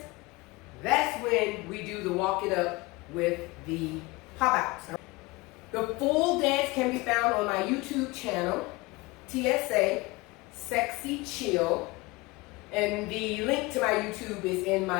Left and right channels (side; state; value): right; quieter; 23.1 dB